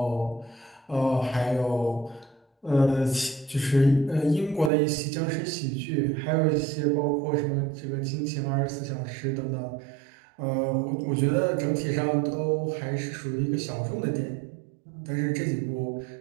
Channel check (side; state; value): left; drops out; at 4.7 s